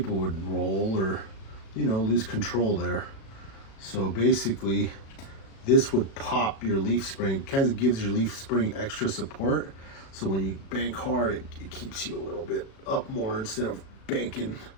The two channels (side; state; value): right; late; 36 ms